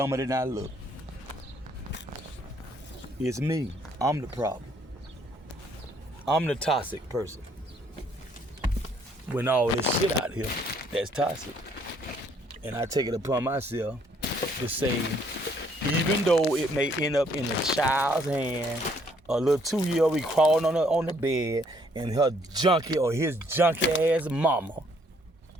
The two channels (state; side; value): normal; both; correlation 0.66